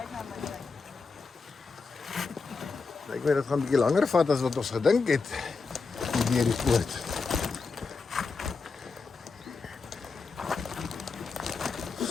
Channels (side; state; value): right; quieter; 4.6 dB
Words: Ek weet dit gaan 'n bietjie langer vat as wat ons gedink het deur die poort.